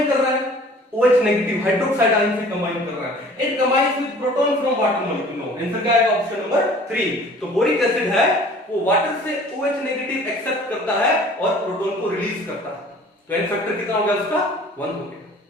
कर रहा है OH नेगेटिव हाइड्रोक्साइड आयन से कंबाइन कर रहा है। It combines with proton from water molecule. No, answer क्या आएगा? Option number 3। तो बोरिक एसिड है वो वाटर से OH नेगेटिव एक्सेप्ट करता है और प्रोटॉन को रिलीज करता है। तो एन फैक्टर कितना हो गया उसका? 1 हो गया।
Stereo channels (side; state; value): both; normal; correlation 0.49